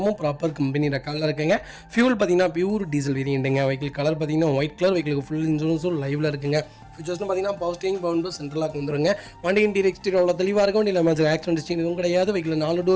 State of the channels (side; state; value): both; identical; correlation 1.00